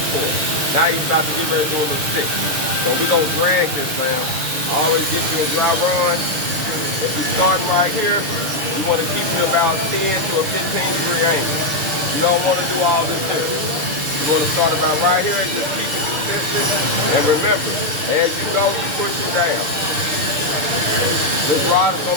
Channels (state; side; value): late; left; 6.6 ms